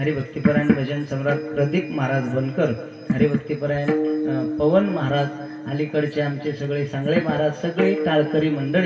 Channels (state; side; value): identical; both; correlation 1.00